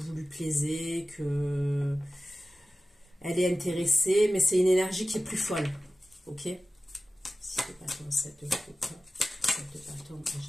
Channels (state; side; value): normal; both; correlation 0.95